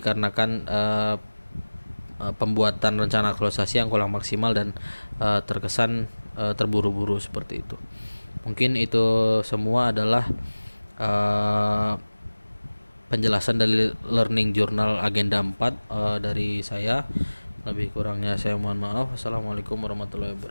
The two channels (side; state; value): both; inverted; correlation -1.00